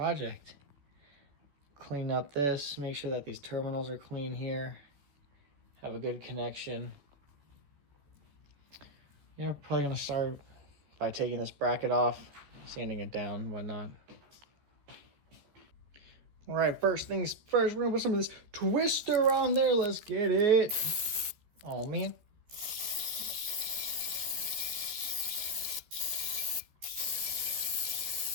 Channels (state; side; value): late; left; 14 ms